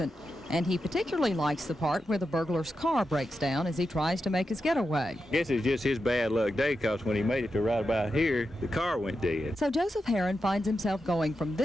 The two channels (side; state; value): both; normal; correlation 0.88